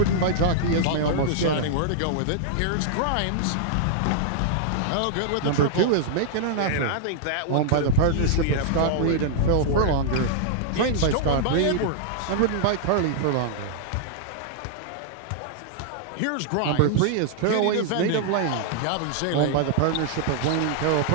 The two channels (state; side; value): different; both; correlation -0.01